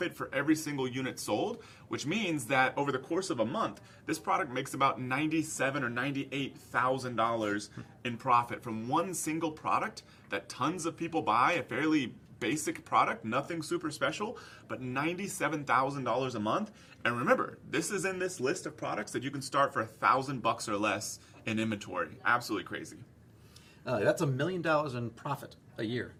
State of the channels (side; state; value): both; identical; correlation 1.00